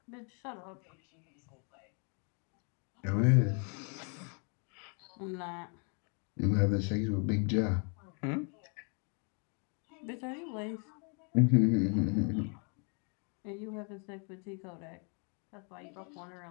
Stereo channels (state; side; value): quieter; right; 38.1 dB